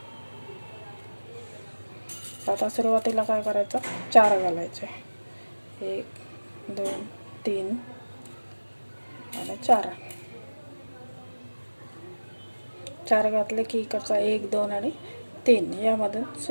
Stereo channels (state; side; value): inverted; both; correlation -1.00